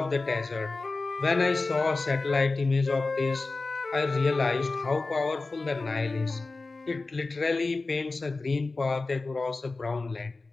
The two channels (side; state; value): right; quieter; 3.6 dB